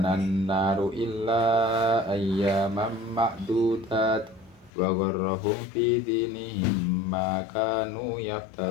an-naru illa ayyaman ma'dudat wa gharrahum fi dinihim ma kanu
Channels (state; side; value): drops out; right; at 4.7 s